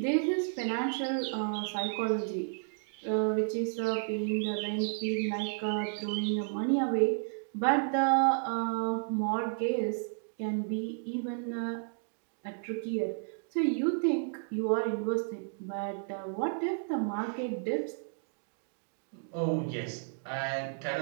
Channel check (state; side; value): silent; left; digital silence